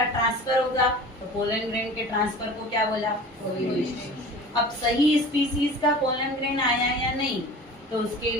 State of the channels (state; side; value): normal; both; correlation 0.40